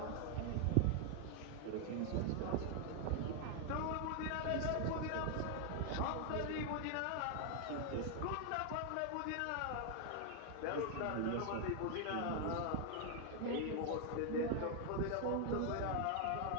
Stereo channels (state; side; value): different; both; correlation 0.00